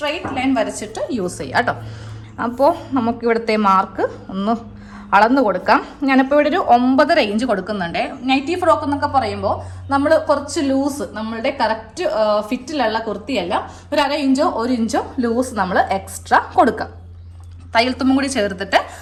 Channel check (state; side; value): identical; both; correlation 1.00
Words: ലൈൻ വരച്ചിട്ട് യൂസ് ചെയ്യാം കേട്ടോ. അപ്പോൾ നമുക്കിവിടുത്തെ മാർക്ക് ഒന്ന് അളന്ന് കൊടുക്കാം. ഞാനിപ്പോൾ ഇവിടെ ഒരു 9.5 ഇഞ്ച് കൊടുക്കുന്നുണ്ട്. നൈറ്റി ഫ്രോക്ക് എന്നൊക്കെ പറയുമ്പോൾ നമ്മൾ കുറച്ച് ലൂസ്, നമ്മളുടെ കറക്റ്റ് ഫിറ്റിലുള്ള കുർത്തിയല്ല, ഒരു 1/2 ഇഞ്ചോ 1 ഇഞ്ചോ ലൂസ് നമ്മൾ എക്സ്ട്രാ കൊടുക്കാം. തയ്യൽ തുമ്പും കൂടി ചേർത്തിട്ട്